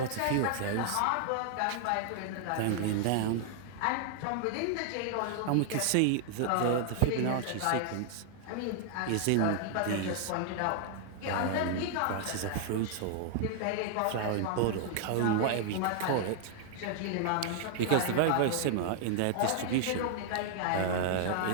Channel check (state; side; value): different; both; correlation 0.00